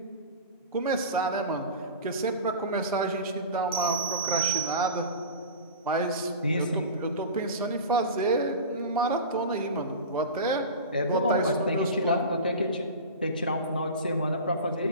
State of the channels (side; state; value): both; inverted; correlation -0.31